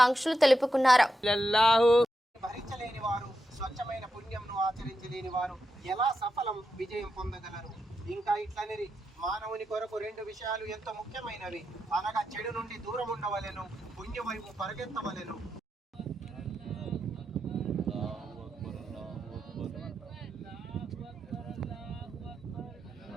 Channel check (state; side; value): normal; both; correlation 0.87